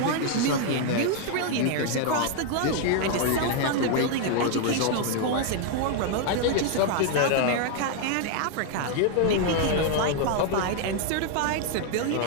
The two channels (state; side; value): different; both; correlation 0.00